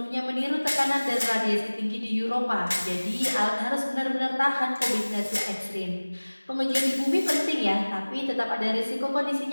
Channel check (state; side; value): inverted; both; correlation -1.00